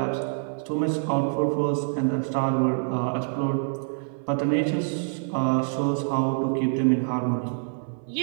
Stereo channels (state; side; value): silent; left; 55 dB below the other